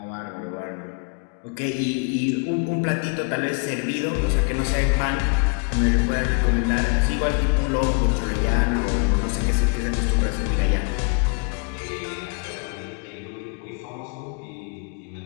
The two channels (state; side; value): quieter; right; 36.2 dB